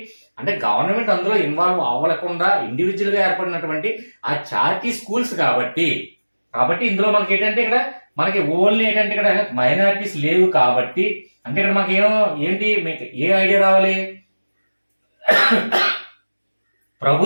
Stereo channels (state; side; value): inverted; both; correlation -1.00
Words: అంటే గవర్నమెంట్ అందులో ఇన్వాల్వ్ అవ్వకుండా ఇండివిజువల్ గా ఏర్పడినటువంటి ఆ చారిటీ స్కూల్స్. కాబట్టి ఇందులో మనకి ఏంటంటే ఇక్కడ మనకి ఓన్లీ ఏంటంటే ఇక్కడ మైనారిటీస్ లేవు. కాబట్టి అంటే ఇక్కడ మనకి ఏంటి మీకు ఏ ఐడియా రావాలి,